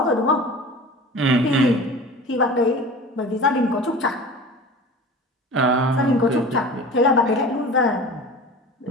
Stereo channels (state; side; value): normal; both; correlation 0.37